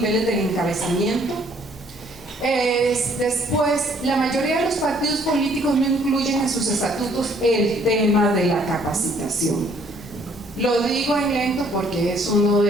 del encabezamiento. Después, la mayoría de los partidos políticos no incluyen en sus estatutos el tema de la capacitación. Lo digo en lento porque es uno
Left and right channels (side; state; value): both; normal; correlation 0.62